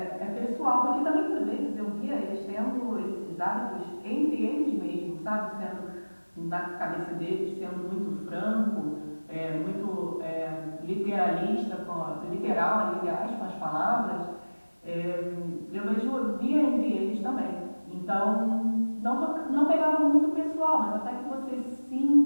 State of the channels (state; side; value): inverted; both; correlation -1.00